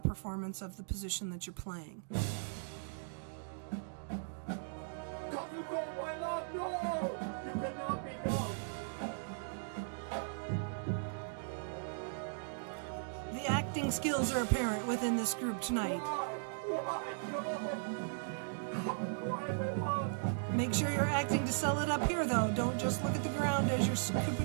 performance of the position that you're playing. acting skills are apparent within this group tonight. Make sure you're acting to sell it up here, though. Don't just look at the ground as you're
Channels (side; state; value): left; silent; digital silence